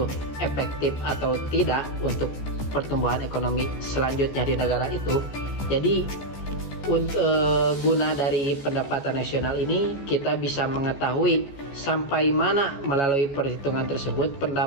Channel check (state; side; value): late; right; 14 ms